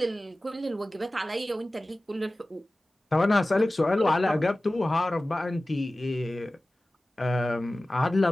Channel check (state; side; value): normal; both; correlation 0.96